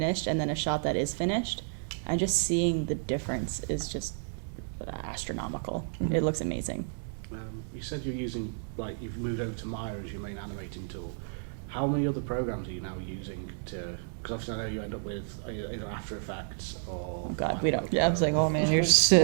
and then a shot that is finished, and just seeing the difference is just astronomical. It looks amazing. You said you're using, you've moved over to Maya as your main animating tool. How many other programs are you now using to Because obviously I know you end up with either After Effects or... Oh God, we don't. Yeah, I was like, oh man, you're just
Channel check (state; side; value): silent; left; digital silence